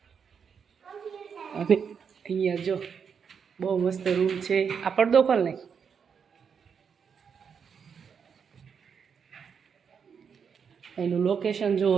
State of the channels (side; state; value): left; quieter; 6.7 dB